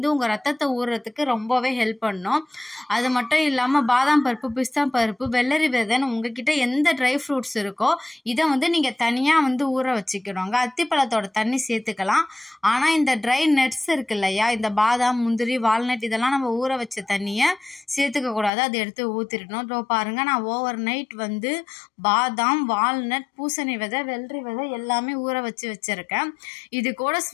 உங்க ரத்தத்தை ஊறுறதுக்கு ரொம்பவே ஹெல்ப் பண்ணும். அது மட்டும் இல்லாம பாதாம் பருப்பு, பிஸ்தா பருப்பு, வெள்ளரி விதைன்னு உங்ககிட்ட எந்த ட்ரை ஃப்ரூட்ஸ் இருக்கோ இதை வந்து நீங்க தனியா வந்து ஊற வச்சுக்கணுங்க. அத்திப்பழத்தோட தண்ணி சேர்த்துக்கலாம். ஆனா இந்த ட்ரை நட்ஸ் இருக்கு இல்லையா, இந்த பாதாம், முந்திரி, வால்நட் இதெல்லாம் நம்ம ஊற வச்ச தண்ணியை சேர்த்துக்க கூடாது. அதை எடுத்து ஊத்திடணும். இதோ பாருங்க, நான் ஓவர் நைட் வந்து பாதாம், வால்நட், பூசணி விதை, வெள்ளரி விதை எல்லாமே ஊற வச்சிருக்கேன். இது கூட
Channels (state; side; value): drops out; right; at 18.5 s